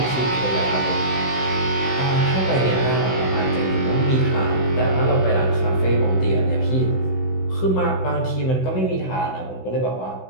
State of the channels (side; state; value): right; late; 16 ms